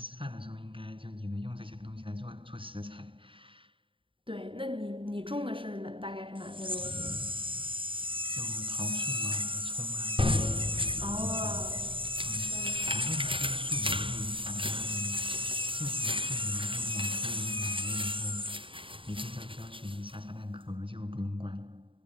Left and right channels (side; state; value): left; late; 0.25 ms